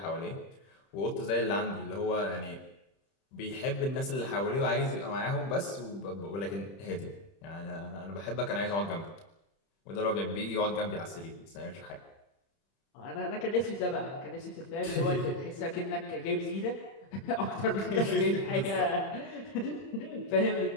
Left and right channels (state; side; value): late; right; 30 ms